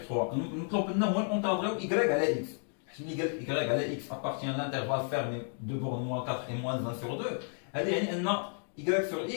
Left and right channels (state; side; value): silent; right; 56 dB below the other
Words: 3. نطلب لنا هو نونطادريو y على x، حيت ملي قال y على x appartient à l'intervalle fermé de borne moins 4 et moins 1 sur 2 هذا يعني ان y sur